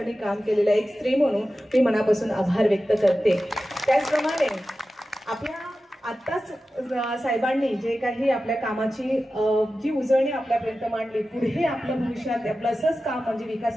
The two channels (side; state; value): both; normal; correlation 0.94